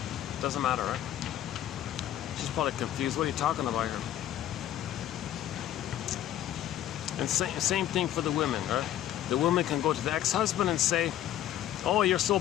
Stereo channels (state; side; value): quieter; right; 12.2 dB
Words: Doesn't matter, right? She's probably confused. What are you talking about here? And same thing for the women, right? The woman can go to the ex-husband and say, oh, you're so